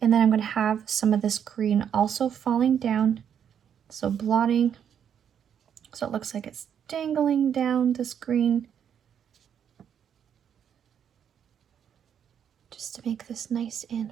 and then I'm going to have some of this green also falling down, so blotting, so it looks like it's dangling down this green, just to make this nice and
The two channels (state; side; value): quieter; left; 8.5 dB